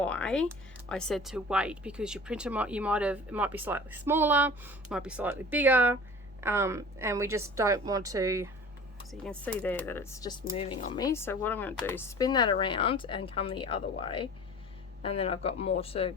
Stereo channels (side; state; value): both; normal; correlation 0.41